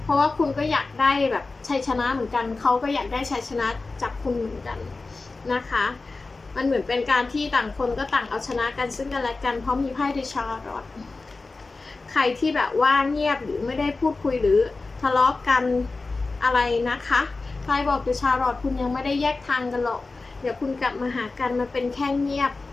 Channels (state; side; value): quieter; right; 3.6 dB